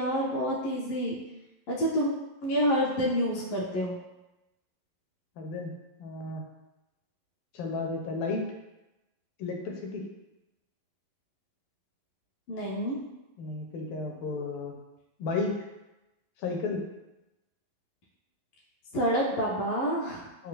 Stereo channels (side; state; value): right; late; 11 ms